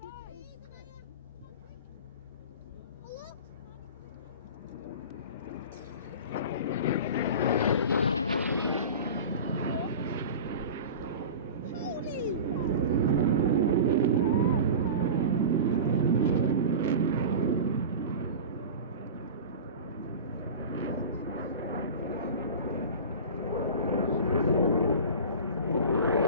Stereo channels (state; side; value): inverted; both; correlation -0.32